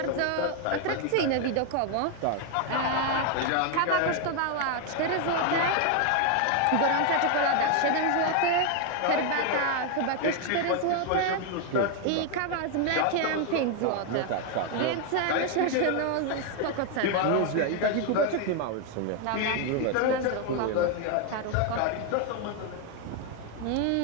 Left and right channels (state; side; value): different; both; correlation 0.01